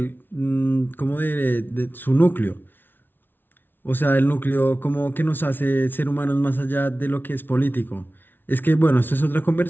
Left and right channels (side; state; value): right; late; 0.098 ms